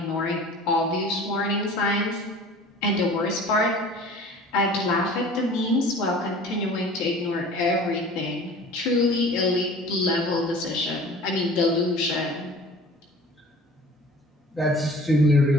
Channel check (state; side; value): normal; both; correlation 0.44